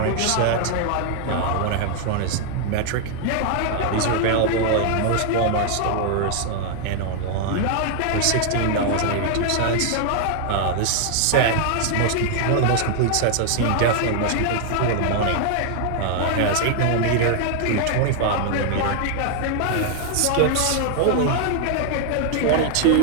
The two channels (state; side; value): different; both; correlation 0.00